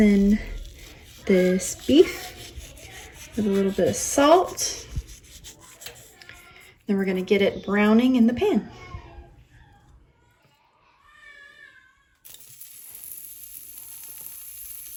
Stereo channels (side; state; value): both; identical; correlation 1.00